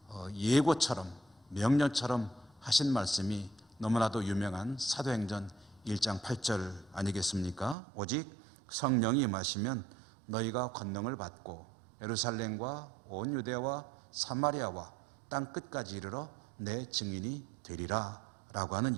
예고처럼 명령처럼 하신 말씀이 너무나도 유명한 사도행전 1장 8절 아니겠습니까? 오직 성령이 임하시면 너희가 권능을 받고 예루살렘과 온 유대와 사마리아와 땅 끝까지 이르러 내 증인이 되리라 라고 하는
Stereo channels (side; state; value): left; drops out; at 7.8 s